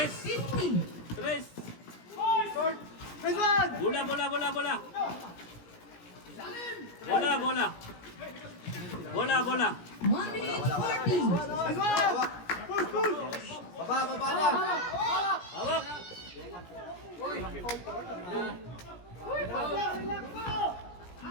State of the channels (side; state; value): right; late; 17 ms